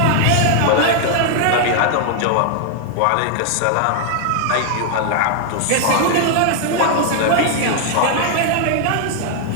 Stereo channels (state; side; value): different; both; correlation 0.00